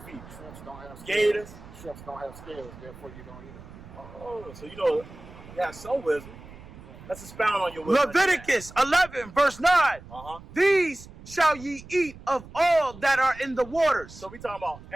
feet, Shrimps don't have scales. gators. Shrimps don't have scales, therefore you don't eat them. Oh, so you know, you have some wisdom. Let's expound on your wisdom. Leviticus 11, verse 9. These shall ye eat of all that are in the waters. So we talking about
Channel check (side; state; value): right; noise; rumble, 18 dB below the sound